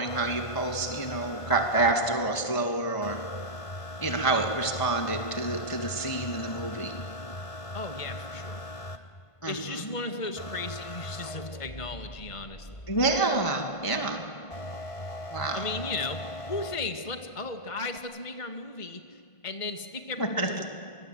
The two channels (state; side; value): late; right; 1.5 ms